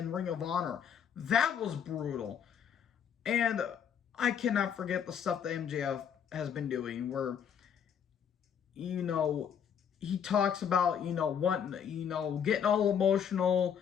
Ring of Honor. That was brutal. And I cannot forget the stuff that MJF has been doing where, he talks about, wanting, getting all emotional.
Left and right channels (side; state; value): right; quieter; 8.0 dB